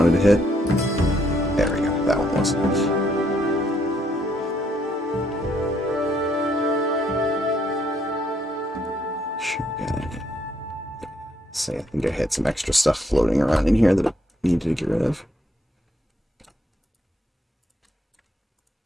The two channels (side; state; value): both; normal; correlation 0.71